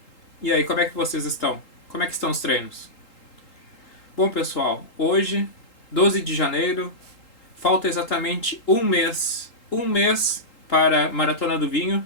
E aí, como é que vocês estão? Como é que estão os treinos? Bom, pessoal, hoje, 12 de janeiro, falta exatamente um mês para a Maratona do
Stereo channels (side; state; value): right; late; 3.8 ms